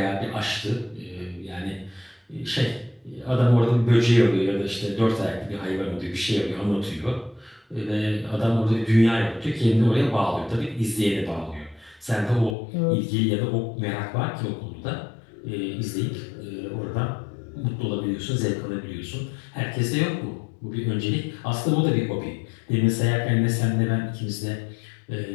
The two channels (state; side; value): drops out; right; at 12.6 s